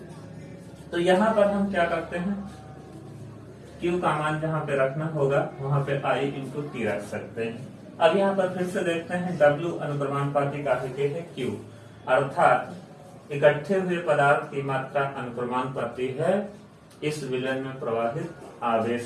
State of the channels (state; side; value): identical; both; correlation 1.00